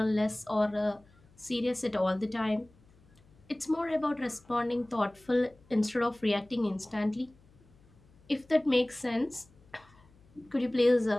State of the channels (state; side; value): noise; left; hum, 29 dB below the sound